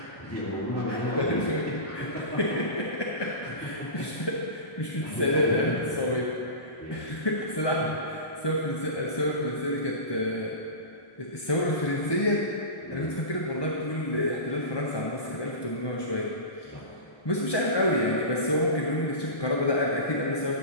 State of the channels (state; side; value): late; right; 1.2 ms